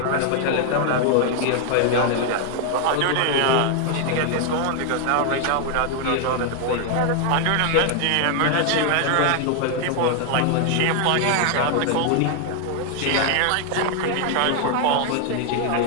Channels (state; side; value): different; both; correlation 0.00